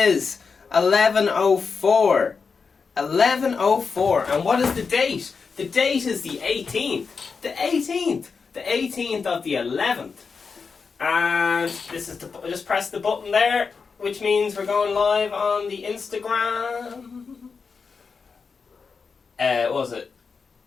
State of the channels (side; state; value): right; quieter; 5.2 dB